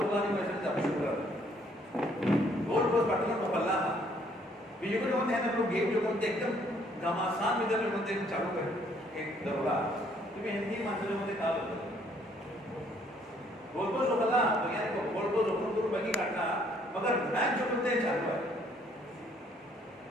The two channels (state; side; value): normal; both; correlation 0.64